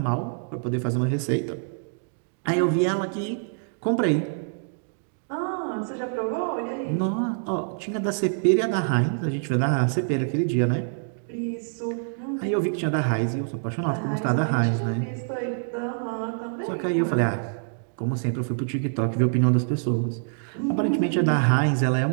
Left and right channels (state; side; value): silent; left; digital silence